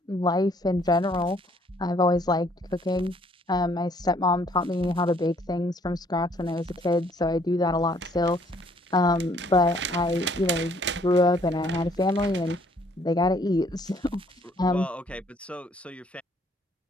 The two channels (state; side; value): normal; both; correlation 0.63